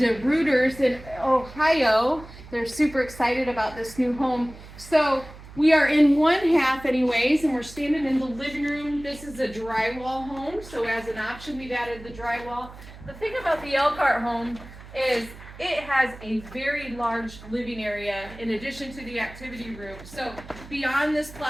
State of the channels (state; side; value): noise; right; hum, 17 dB below the sound